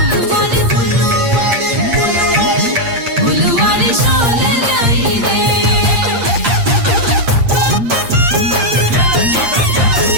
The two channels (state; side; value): late; left; 8.7 ms